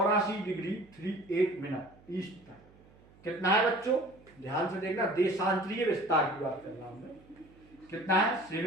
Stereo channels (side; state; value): right; noise; hum, 26 dB below the sound